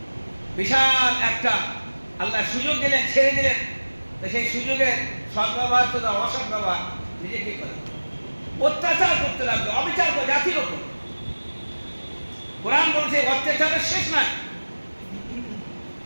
বিশাল একটা আল্লাহ সুযোগ দিলেন, ছেড়ে দিলেন। তো সেই সুযোগের সদ্ব্যবহার তো অসৎ ব্যবহার নিজে কি করে, অত্যাচার করতে লাগলো, অবিচার করে জাতির ওপর। কোরআন বলছে অত্যাচারের শেষ নাই।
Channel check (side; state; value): both; inverted; correlation -1.00